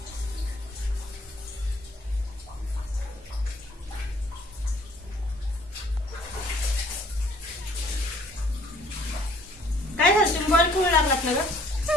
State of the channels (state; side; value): normal; both; correlation 0.58